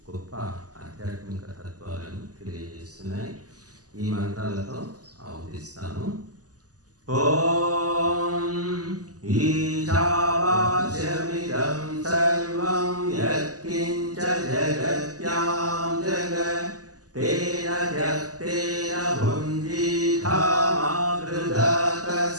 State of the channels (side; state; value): left; late; 0.67 ms